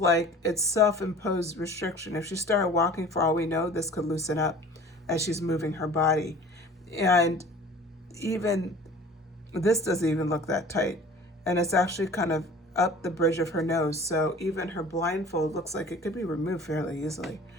it's self-imposed restriction. If she started walking, for all we know, this could loosen up as she's moving her body. And even this doesn't even look that tight. And it's actually kind of up the bridge of her nose. So even her blindfold looks like it could be removed fairly easily.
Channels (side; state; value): both; normal; correlation 0.45